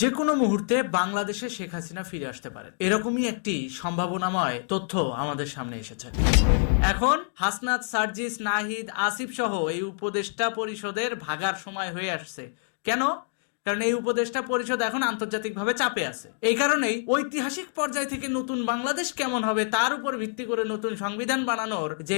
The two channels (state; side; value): silent; right; digital silence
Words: কোনো মুহূর্তে বাংলাদেশে শেখ হাসিনা ফিরে আসতে পারেন, এরকমই একটি সম্ভাবনাময় তথ্য আমাদের সামনে এসেছে। এখন হাসনাত, সার্জিস, নাহিদ, আসিফ সহ এই উপদেষ্টা পরিষদের ভাগার সময় হয়ে আসছে। কেন? কারণ এই উপদেষ্টা পরিষদ এখন আন্তর্জাতিকভাবে চাপে আছে। এই কারণেই ঐতিহাসিক পর্যায় থেকে নতুন বাংলাদেশ কেমন হবে তার উপর ভিত্তি করে নতুন সংবিধান বানানোর